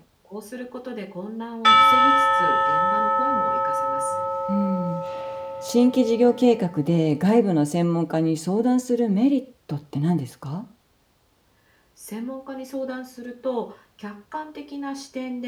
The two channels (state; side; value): identical; both; correlation 1.00